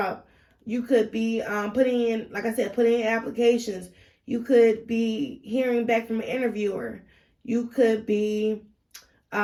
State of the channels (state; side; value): identical; both; correlation 1.00